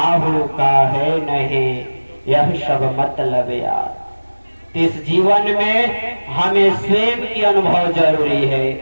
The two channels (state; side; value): inverted; both; correlation -1.00